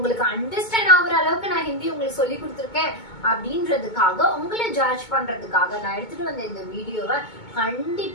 அண்டர்ஸ்டாண்ட் ஆகுற அளவுக்கு நான் ஹிந்தி உங்களுக்கு சொல்லி கொடுத்துருக்கேன் அப்படின்றதுக்காக உங்களை ஜட்ஜ் பண்றதுக்காக நான் எடுத்துட்டு வந்த இந்த வீடியோவை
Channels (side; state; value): right; late; 2.2 ms